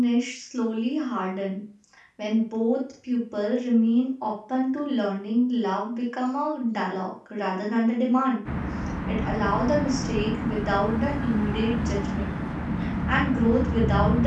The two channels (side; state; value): both; identical; correlation 1.00